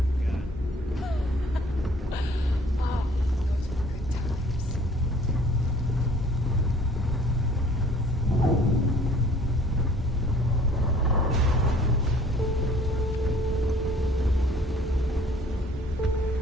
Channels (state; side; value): normal; both; correlation 0.54